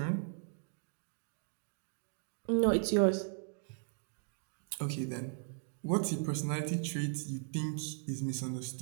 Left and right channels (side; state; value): left; silent; digital silence